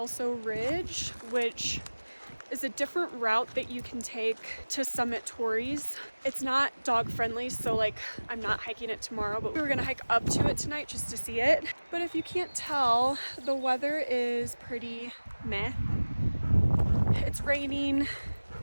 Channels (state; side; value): inverted; both; correlation -1.00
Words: Ridge, which is a different route that you can take to summit Torrey's. It's not dog friendly, so like I'm not hiking it tomorrow, but we were gonna hike up to it tonight just to see it. But if you can't tell, the weather is pretty meh. It's raining.